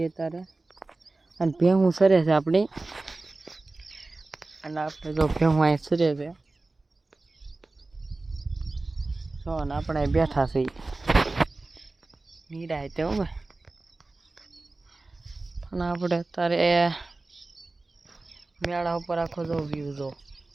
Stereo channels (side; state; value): left; quieter; 3.2 dB